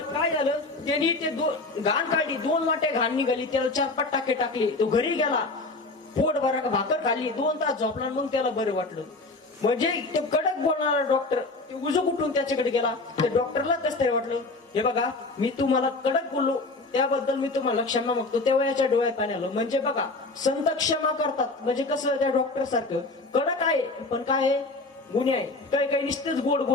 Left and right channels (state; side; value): quieter; right; 3.3 dB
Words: झालं, त्यांनी ते घाण काढली, 2 वाट्या घाण निघाली. त्याला 4-5 टाके टाकले. तो घरी गेला, पोट भरा भाकर खाल्ली, 2 तास झोपला, मग त्याला बरं वाटलं. म्हणजे ते कडक बोलणारा डॉक्टर ते उजू कुठून त्याच्याकडे गेला. त्या डॉक्टरला कसं तरी वाटलं, हे बघा मी तुम्हाला कडक बोललो त्याबद्दल मी तुम्हाला क्षमा मागतो. तेव्हा याच्या डोळ्यात पाणी आलं. म्हणजे बघा संत क्षमा करतात. म्हणजे कसं त्या डॉक्टर सारखं कडक आहे पण काय आहे, गुन्हे आहे. काही नुसतेच गोड